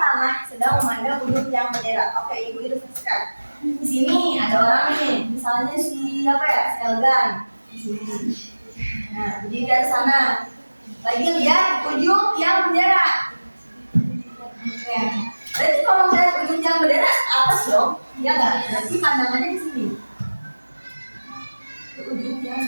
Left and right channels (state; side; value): inverted; both; correlation -1.00